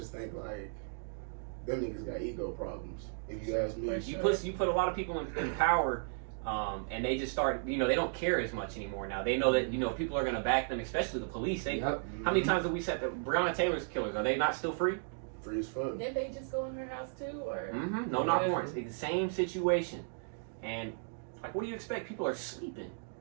think like them niggas got ego problems. If you ask me, You put a lot of people in power, and they just start. You know, they don't care as much anymore now. They know that people are gonna back them, especially the police. How many times have we said that Breonna Taylor's killers, are they not still free? Free as fuck. Did they just go in her house too, or? No, not once. It's the same situation, and like, what do you expect? People are sleeping.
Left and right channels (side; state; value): left; silent; digital silence